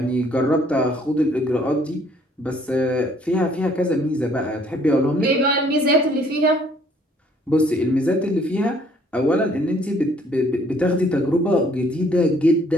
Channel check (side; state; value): both; normal; correlation 0.62